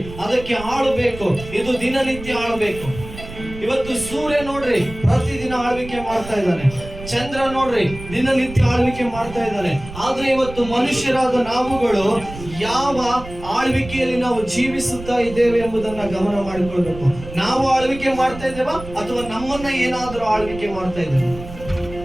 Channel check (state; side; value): noise; right; rumble, 13 dB below the sound